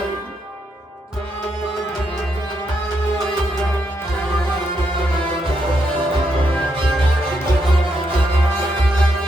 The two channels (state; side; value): normal; both; correlation 0.79